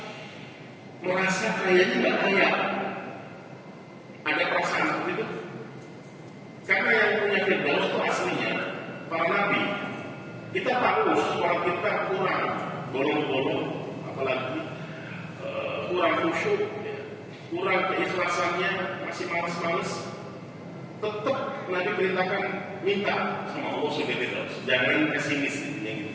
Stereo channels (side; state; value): both; identical; correlation 1.00